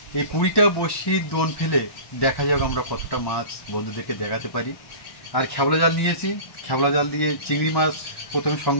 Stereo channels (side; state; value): right; late; 1.1 ms